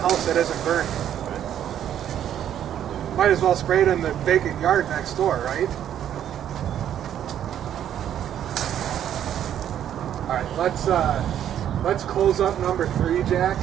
that isn't burning. Might as well spray it in the vacant yard next door, right? All right, let's close up number 3, Jack.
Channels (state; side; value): quieter; left; 10.3 dB